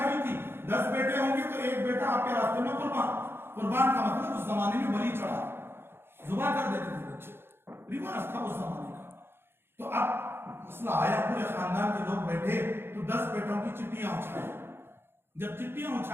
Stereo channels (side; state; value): left; late; 0.11 ms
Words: تھی 10 بیٹے ہوں گے تو ایک بیٹا آپ کے راستے میں قربان کا مطلب اس زمانے میں بلی چڑھا، ذبح کر دیتے تھے بچے، رواج تھا اس زمانے کا۔ تو اب مسئلہ آیا، پورے خاندان کے لوگ بیٹھے تو 10 بیٹوں کی چٹیاں اچھالی، جب چٹیاں